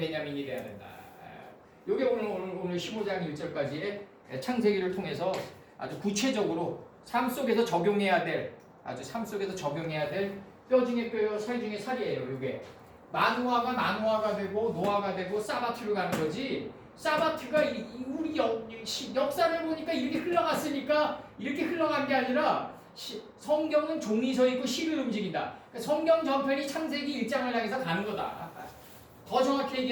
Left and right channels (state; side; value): identical; both; correlation 1.00